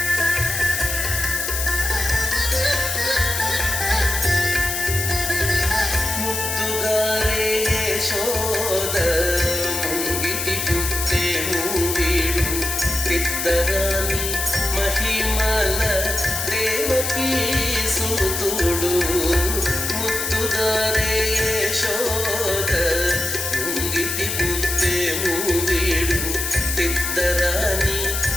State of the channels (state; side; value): noise; left; hiss, 2 dB below the sound